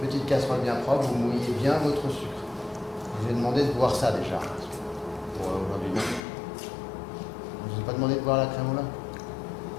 Petite casserole bien propre, vous mouillez bien votre sucre. Je vous ai demandé de boire ça déjà. Pour aujourd'hui, non. Je ne vous ai pas demandé de boire la crème au lait.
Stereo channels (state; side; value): drops out; right; at 6.2 s